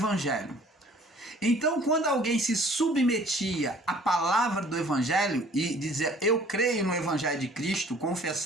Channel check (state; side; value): normal; both; correlation 0.54